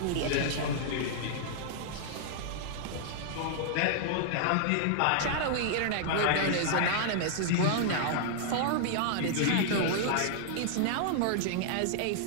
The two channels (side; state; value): both; different; correlation -0.01